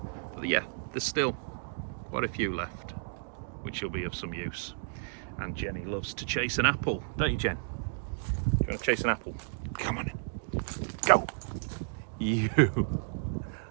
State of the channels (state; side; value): silent; left; digital silence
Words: But yeah, there's still quite a few left, which will be of some use. And Jenny loves to chase an apple, don't you, Jen? You want to chase an apple? Come on, go! You!